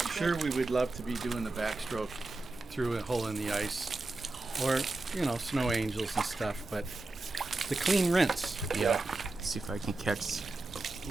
sure, we would love to be doing the backstroke through a hole in the ice, or snow angels and stuff, but the clean rinse. Yeah. See if I can catch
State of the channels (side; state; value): left; quieter; 3.1 dB